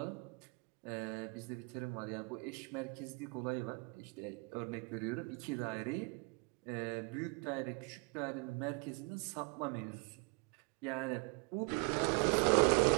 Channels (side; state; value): left; quieter; 31.6 dB